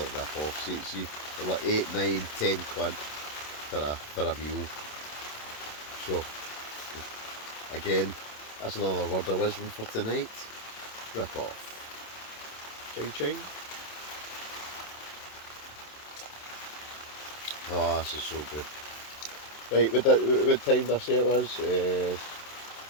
rip-off. See, they're like 8, 9, 10 quid for a meal. So, again, that's another word of wisdom for tonight. Rip-off. Ching ching. Oh, this is so good. Right, what time did I say it was?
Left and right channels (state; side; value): late; right; 27 ms